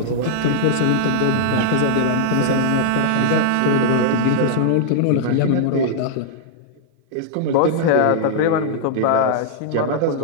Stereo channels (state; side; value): different; both; correlation -0.01